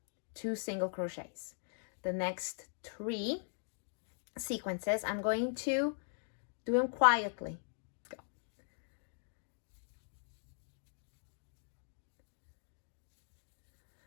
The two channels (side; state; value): right; silent; digital silence